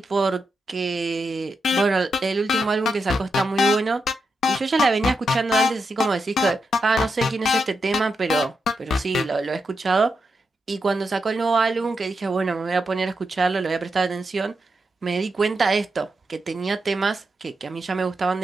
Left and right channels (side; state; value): both; normal; correlation 0.86